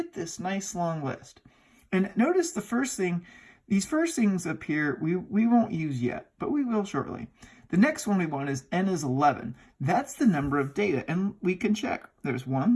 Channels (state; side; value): identical; both; correlation 1.00